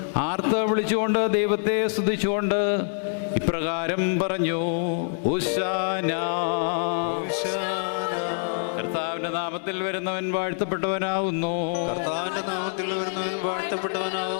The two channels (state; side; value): silent; right; digital silence